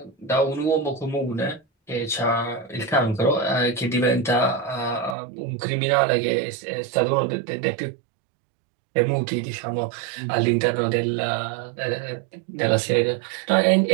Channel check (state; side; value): drops out; left; at 5.2 s